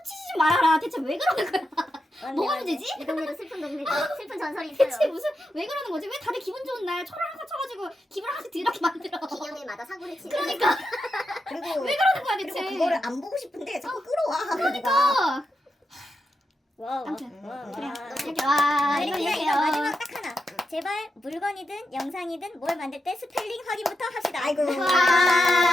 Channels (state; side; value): normal; both; correlation 0.86